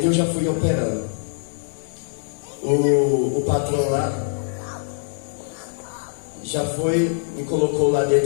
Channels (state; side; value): silent; right; 63 dB below the other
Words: já foi operando. O patrão lá já foi, me colocou lá